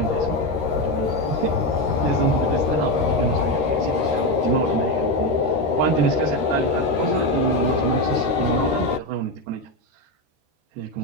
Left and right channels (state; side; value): late; left; 13 ms